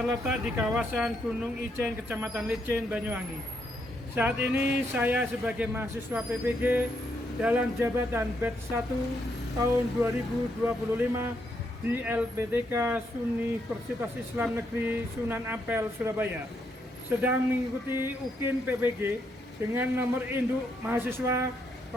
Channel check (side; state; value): both; normal; correlation 0.77